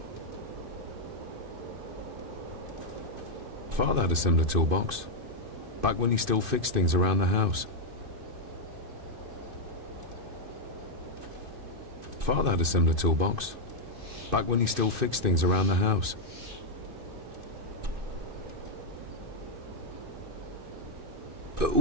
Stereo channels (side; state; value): left; late; 2.5 ms